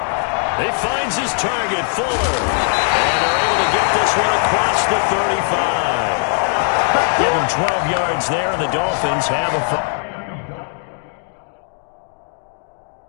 He finds his target, Fuller. And they're able to get this one across the 35. Give him 12 yards there, and the Dolphins have a...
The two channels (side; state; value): right; silent; 59 dB below the other